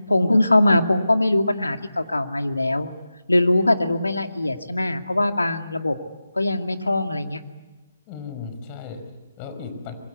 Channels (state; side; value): inverted; both; correlation -0.92